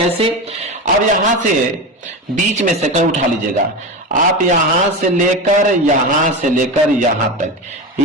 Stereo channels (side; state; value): both; normal; correlation 0.21